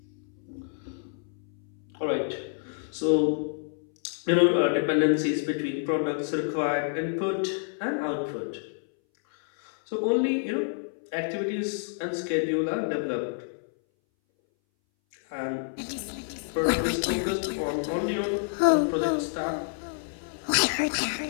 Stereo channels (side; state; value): right; silent; 59 dB below the other